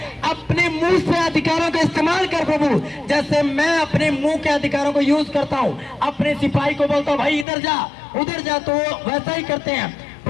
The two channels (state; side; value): drops out; right; at 7.5 s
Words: अपने मुंह से अधिकारों का इस्तेमाल कर प्रभु। जैसे मैं अपने मुंह के अधिकारों को यूज करता हूं, अपने सिपाही को बोलता हूं भाई इधर जा उधर जा, तो वो वैसा ही करते हैं।